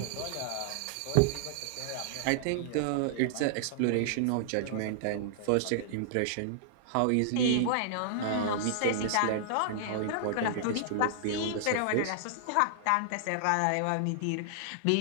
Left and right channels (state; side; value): different; both; correlation -0.01